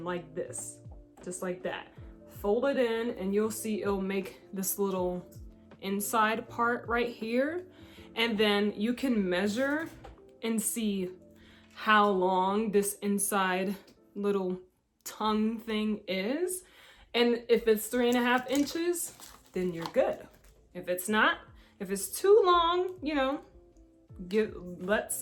like this, just like that. Fold it in, and you'll see it'll make this little inside part right here. And then you can measure and see how long this inside little tongue thing is. And if it's 3.5 inches, then you're good. If it's not, if it's too long, you know, let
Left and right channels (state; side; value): identical; both; correlation 1.00